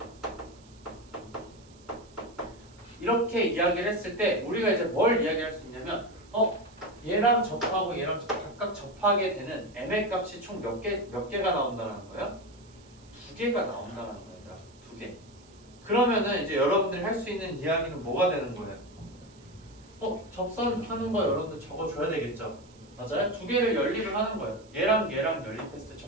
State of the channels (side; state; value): right; noise; hiss, 27 dB below the sound